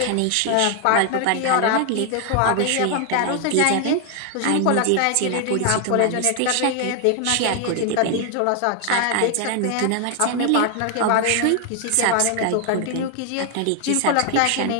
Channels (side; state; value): both; different; correlation 0.00